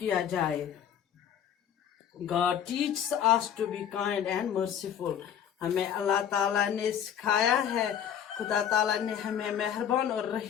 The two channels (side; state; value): right; quieter; 9.2 dB